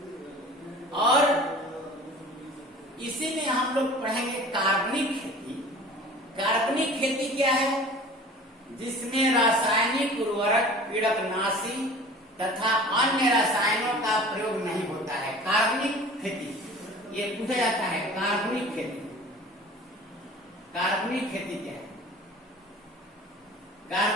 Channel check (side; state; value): both; normal; correlation 0.43